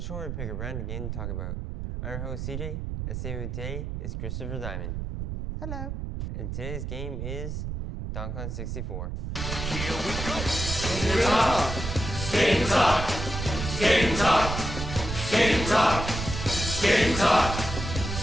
where we pick a random game to talk about. I'm your host CJ, and sitting with today is Christopher Diamond. Hello. And today's game is Donkey Kong 64. Here we go! Game Talk! Game Talk! Game Talk! Game Talk!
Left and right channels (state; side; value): noise; right; rumble, 5 dB below the sound